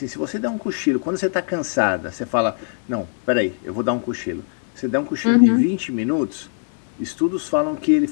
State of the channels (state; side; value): silent; right; digital silence